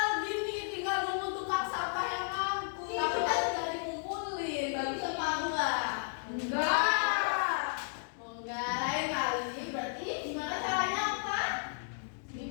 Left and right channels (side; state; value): right; silent; digital silence